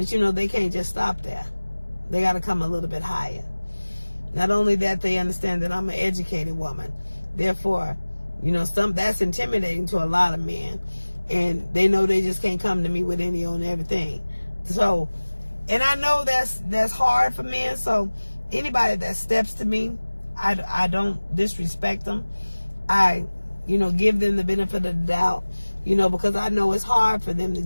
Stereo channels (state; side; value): inverted; both; correlation -1.00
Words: you know, they can't just stop there. They got to come a little bit higher. Not only that, they understand that I'm an educated woman. Therefore, you know, that's intimidating to a lot of men. And they know they just can't come to me with any on everything. So, and I know that's hard for men. So anybody that steps to me, I don't disrespect them. I, you know, give them the benefit of the doubt, you know, because I know it's hard for them to